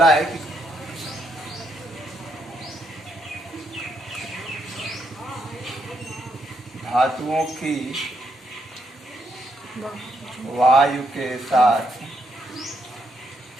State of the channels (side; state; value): both; normal; correlation 0.76